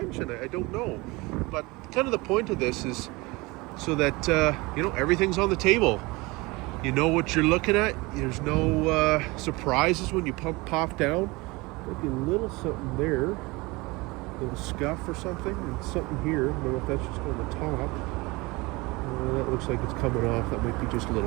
I don't know. But kind of the point of this is so that, everything's on the table. You know what you're looking at. There's no surprises when you pop down. Maybe a little something there. A little scuff or something. And something here. I don't know if that's just on the top. That looks like it's coming off. That might be just a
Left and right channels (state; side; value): quieter; left; 23.8 dB